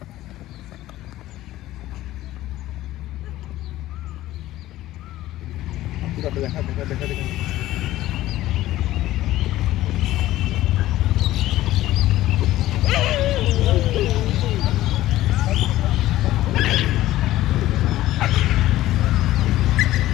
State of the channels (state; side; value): quieter; right; 15.3 dB